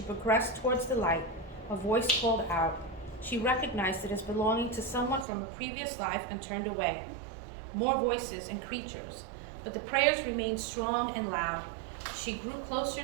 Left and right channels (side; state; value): left; drops out; at 5.2 s